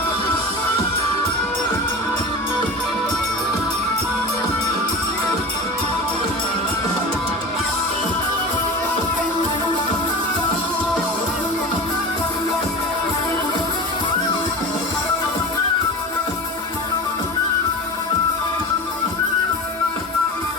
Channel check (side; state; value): both; normal; correlation 0.31